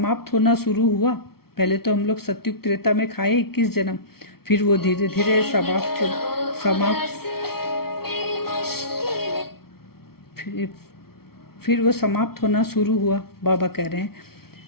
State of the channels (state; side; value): late; right; 0.94 ms